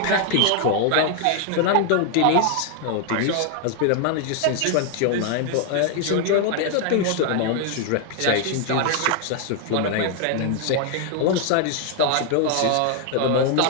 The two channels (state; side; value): different; both; correlation 0.00